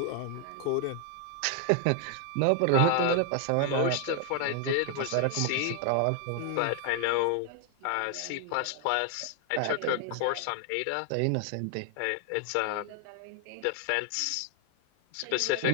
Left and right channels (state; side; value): different; both; correlation 0.00